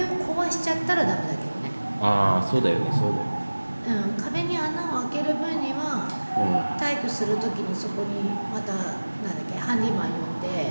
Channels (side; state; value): both; inverted; correlation -1.00